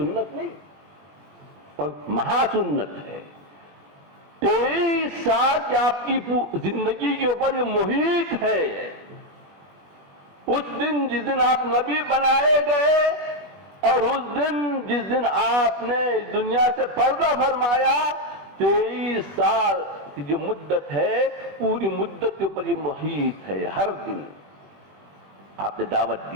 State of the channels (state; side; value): late; left; 21 ms